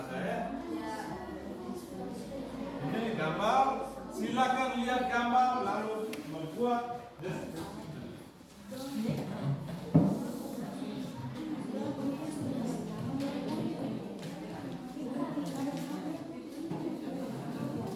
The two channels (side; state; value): both; identical; correlation 1.00